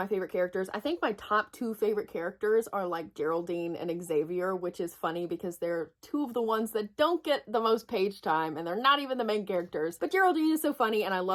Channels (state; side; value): identical; both; correlation 1.00